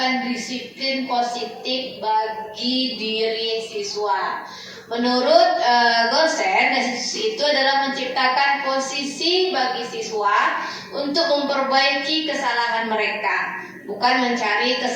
disiplin positif bagi diri siswa. Menurut Gosen, restitusi itu adalah menciptakan posisi bagi siswa untuk memperbaiki kesalahan mereka, bukan mencari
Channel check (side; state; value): both; identical; correlation 1.00